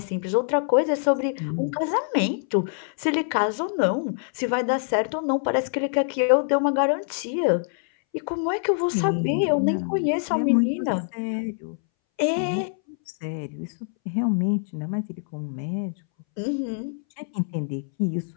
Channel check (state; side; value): silent; right; 61 dB below the other